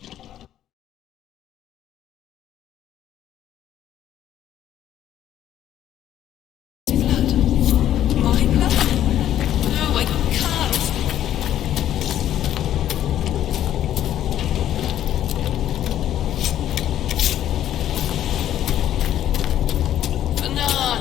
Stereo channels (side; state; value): right; quieter; 11.6 dB